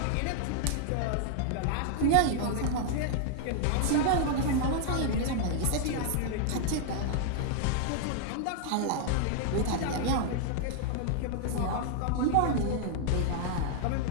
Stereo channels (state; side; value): different; both; correlation 0.00